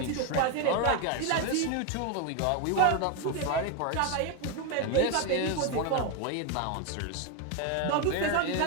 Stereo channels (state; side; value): different; both; correlation 0.02